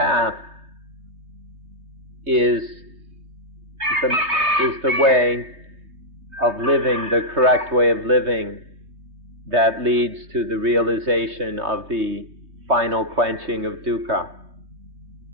is the way of living, the correct way of living that leads to the realization of the final quenching of dukkha.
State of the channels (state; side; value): late; left; 3.5 ms